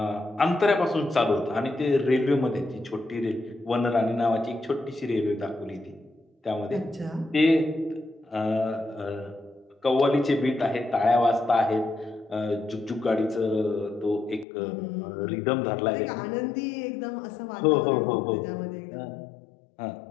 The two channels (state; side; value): drops out; right; at 14.5 s